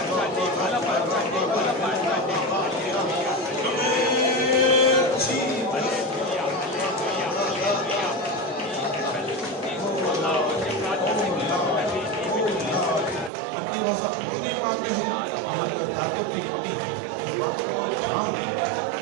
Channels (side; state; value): left; drops out; at 13.3 s